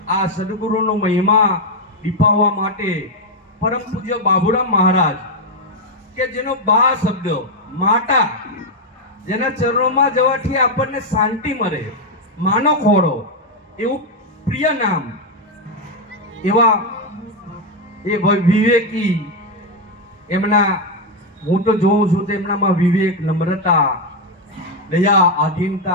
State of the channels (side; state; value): both; normal; correlation 0.03